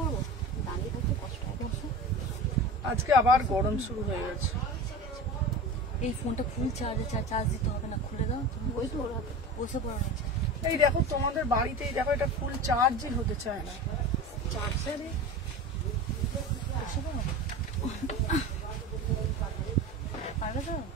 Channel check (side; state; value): both; normal; correlation 0.31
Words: দাঁড়িয়ে থাকতে কষ্ট হয়। আজকে আবার গরম শুরু হয়ে গেছে। এই ফোনটা ফুল চার্জ দিতে হবে না, খুলে দাও। ওই তো ওরা বসে পড়া রয়েছে। এই দেখো তোমাদের বাড়িতেই দেখো এটা ফুল চার্জই হতে চায় না। চার্জারে